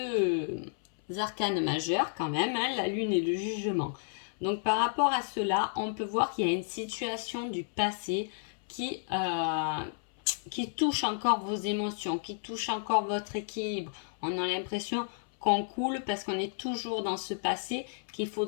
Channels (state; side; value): silent; right; 57 dB below the other